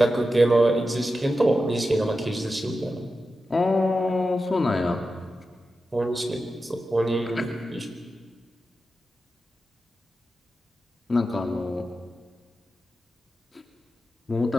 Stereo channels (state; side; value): normal; both; correlation 0.91